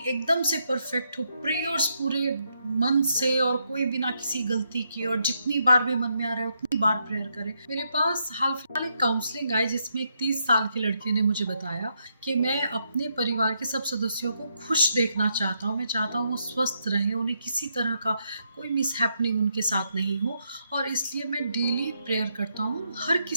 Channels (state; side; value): inverted; both; correlation -0.78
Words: एकदम से परफेक्ट हो, प्रेयर्स पूरे मन से और कोई बिना किसी गलती के, और जितनी बार भी मन में आ रहा है उतनी बार प्रेयर करे। मेरे पास हाल फिलहाल एक काउंसलिंग आई जिसमें एक 30 साल के लड़के ने मुझे बताया कि मैं अपने परिवार के सब सदस्यों को खुश देखना चाहता हूँ, मैं चाहता हूँ वो स्वस्थ रहें, उन्हें किसी तरह का कोई मिसहैपनिंग उनके साथ नहीं हो, और इसलिए मैं डेली प्रेयर करता हूँ, हर